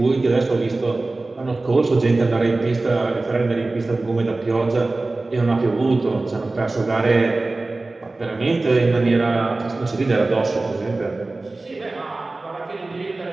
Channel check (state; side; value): quieter; left; 3.2 dB